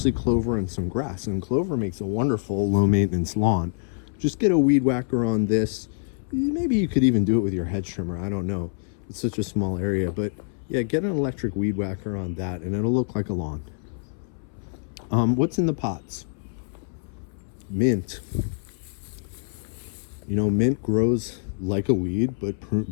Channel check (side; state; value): right; silent; 61 dB below the other